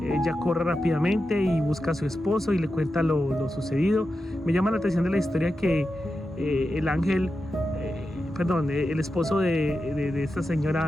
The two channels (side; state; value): both; normal; correlation 0.90